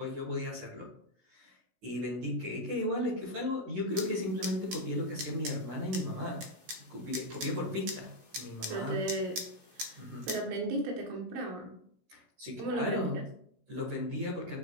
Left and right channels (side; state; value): left; late; 16 ms